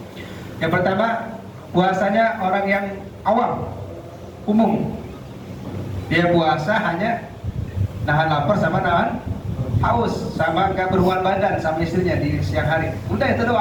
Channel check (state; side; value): identical; both; correlation 1.00